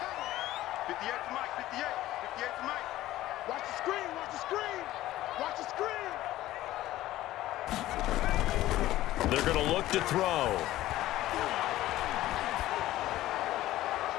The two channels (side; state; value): right; quieter; 15.3 dB